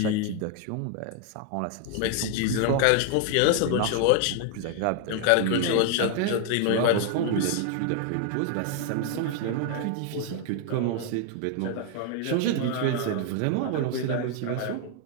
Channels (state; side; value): different; both; correlation 0.00